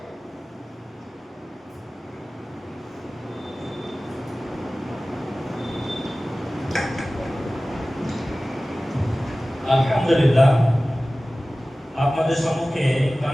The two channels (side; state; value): both; normal; correlation 0.97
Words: আলহামদুলিল্লাহ, আপনাদের সম্মুখে